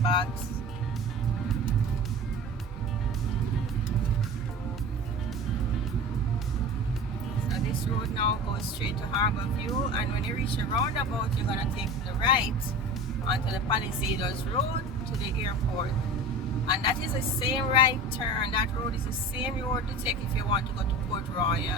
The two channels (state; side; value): normal; both; correlation 0.35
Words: So this road now goes straight to Harbour View, and when you reach the roundabout, you're gonna take the right onto the Palisadoes Road to the airport. And that is the same right turn. That road is the same road to take if you want to go to Port